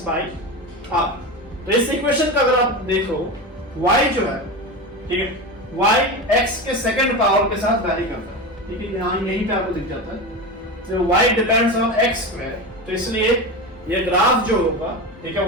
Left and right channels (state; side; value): normal; both; correlation 0.23